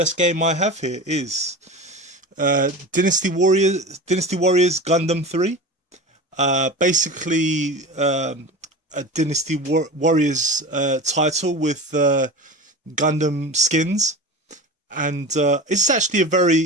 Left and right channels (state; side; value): normal; both; correlation 0.31